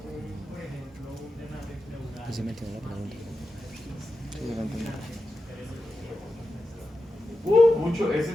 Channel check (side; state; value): both; normal; correlation 0.90